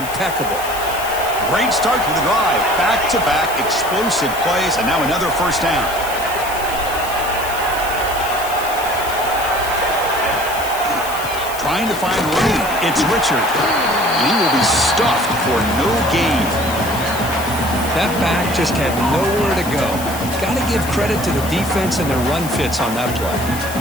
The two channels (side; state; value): left; noise; hiss, 11 dB below the sound